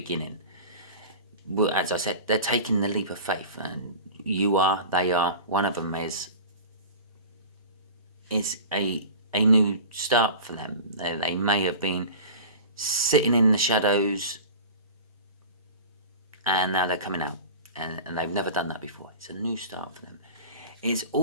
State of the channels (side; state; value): both; inverted; correlation -0.35